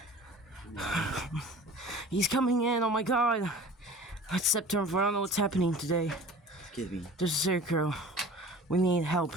He's coming in. Oh my god. It's September 4th. I don't know what's happening today. Excuse me. There's a serial killer. We need help.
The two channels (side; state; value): both; normal; correlation 0.42